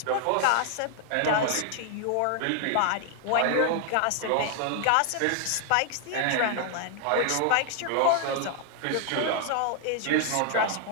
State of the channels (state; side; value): different; both; correlation 0.00